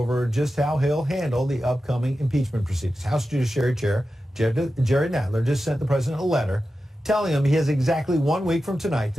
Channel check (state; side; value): normal; both; correlation 0.92